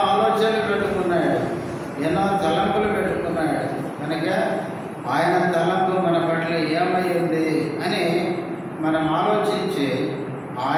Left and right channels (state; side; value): identical; both; correlation 1.00